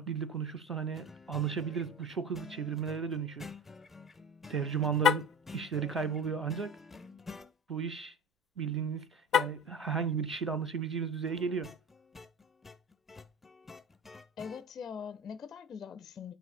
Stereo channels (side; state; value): both; normal; correlation 0.34